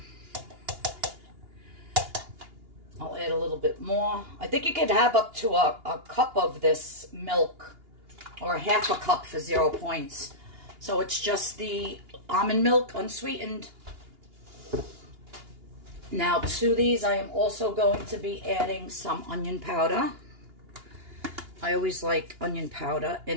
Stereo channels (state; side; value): late; left; 2.8 ms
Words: I'll add a little bit more. I think you could have up to a cup of this milk, or half a cup for 0 points. So it's just the almond milk, unsweetened. Now to these, I am also going to be adding some onion powder. I always like onion powder